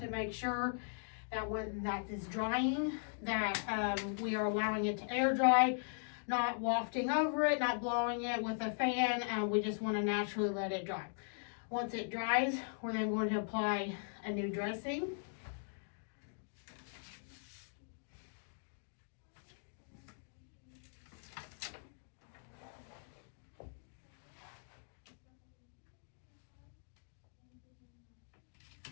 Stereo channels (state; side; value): silent; right; digital silence